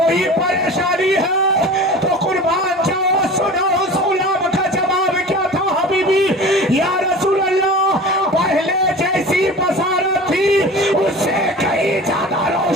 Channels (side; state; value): both; normal; correlation 0.37